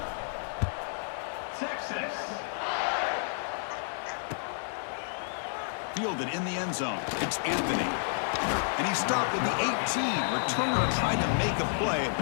Fielded in the end zone. It's Anthony. And he stopped at the 18. Returner tried to make a play,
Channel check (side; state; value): right; silent; digital silence